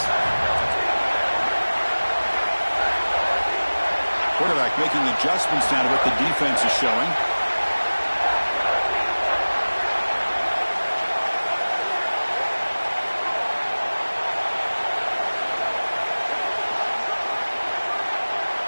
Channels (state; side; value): inverted; both; correlation -1.00